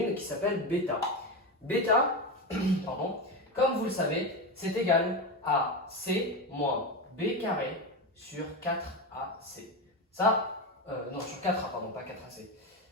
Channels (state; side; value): normal; both; correlation 0.17